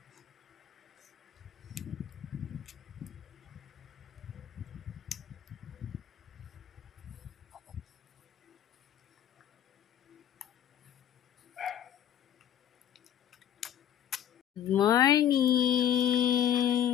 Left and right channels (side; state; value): right; quieter; 10.4 dB